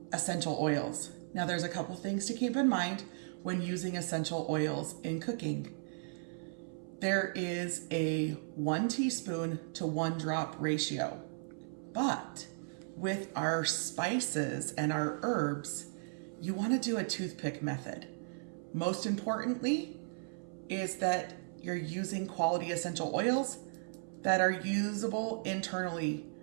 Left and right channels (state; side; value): silent; left; 54 dB below the other